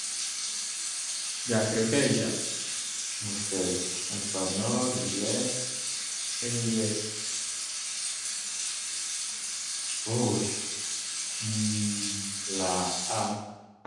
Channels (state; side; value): identical; both; correlation 1.00